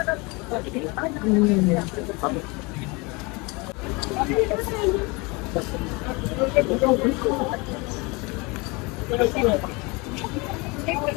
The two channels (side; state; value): right; quieter; 27.1 dB